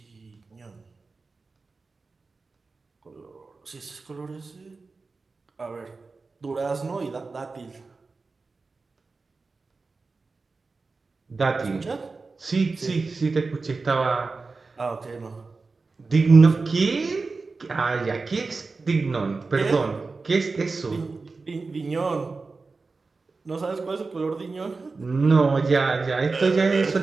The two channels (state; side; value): quieter; left; 4.0 dB